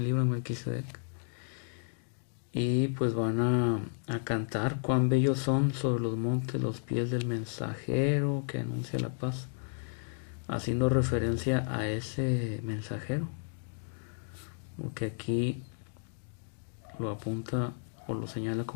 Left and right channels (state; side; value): silent; right; digital silence